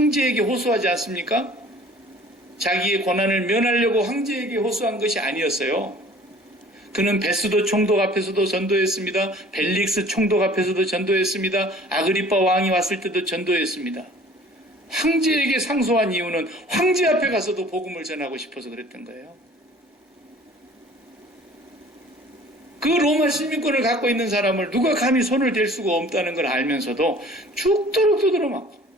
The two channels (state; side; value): normal; both; correlation 0.49